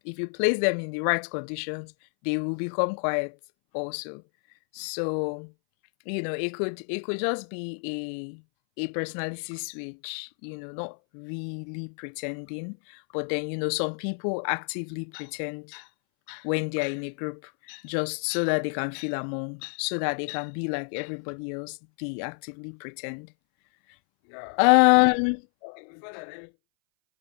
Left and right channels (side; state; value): right; silent; 59 dB below the other